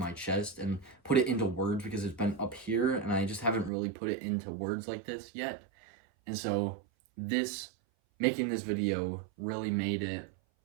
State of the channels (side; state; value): left; drops out; at 3.7 s